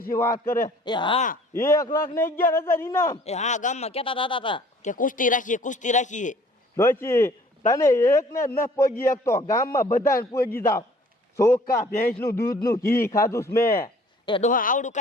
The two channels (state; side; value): normal; both; correlation 0.54